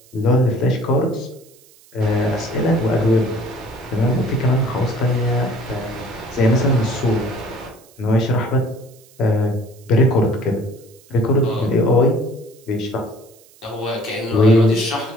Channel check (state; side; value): noise; right; hiss, 27 dB below the sound